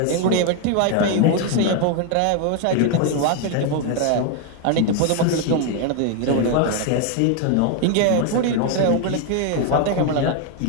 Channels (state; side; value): different; both; correlation 0.01